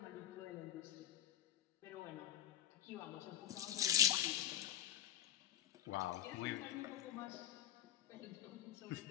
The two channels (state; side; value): quieter; right; 11.0 dB